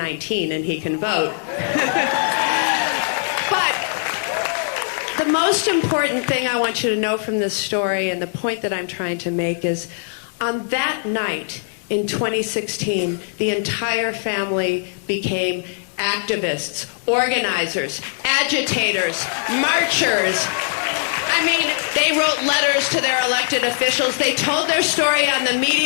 and he can vote. But the most important thing I want you to know from this story, and the point that I'm trying to make, is on that night in 2016, the entire family became activists, organizers, agitators, marchers. I mean, they wrote letters to their elected officials. They told their story on the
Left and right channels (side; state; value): right; silent; digital silence